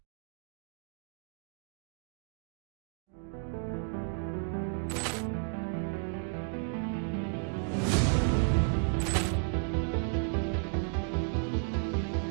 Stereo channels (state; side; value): silent; left; 56 dB below the other